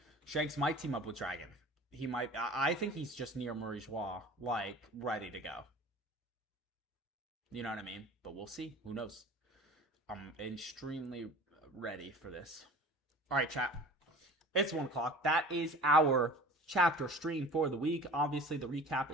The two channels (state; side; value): normal; both; correlation 0.41